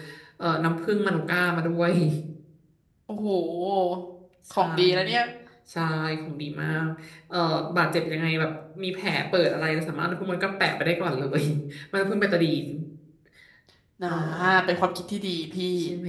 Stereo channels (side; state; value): both; identical; correlation 1.00